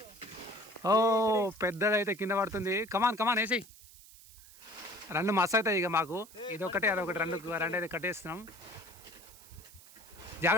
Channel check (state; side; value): noise; right; hiss, 21 dB below the sound